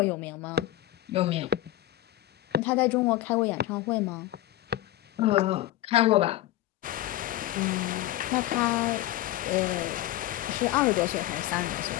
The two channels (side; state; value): right; quieter; 15.3 dB